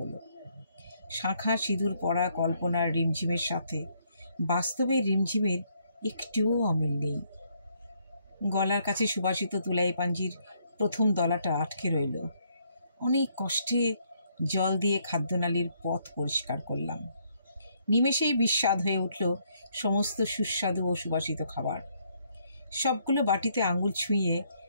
শাঁখা সিঁদুর পরা কল্পনার রিমঝিমের সাথে বাস্তবের রিমঝিমের একটুও অমিল নেই। গলার কাছে সুবাসিত তুলাই পাঞ্জির প্রথম দলাটা আটকে রইল। অনেক কষ্টে জল দিয়ে খাদ্যনালীর পথ পরিষ্কার করলাম। নিমেষেই বিস্বাদ হয়ে উঠল সমস্ত সুস্বাদু ও সুবাসিত খাবার। সবগুলো বাটিতে আঙুল ছুঁয়ে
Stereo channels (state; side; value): inverted; both; correlation -0.71